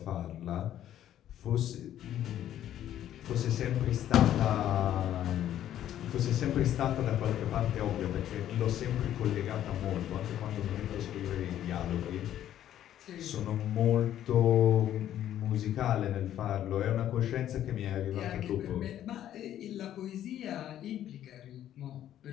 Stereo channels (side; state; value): right; quieter; 11.5 dB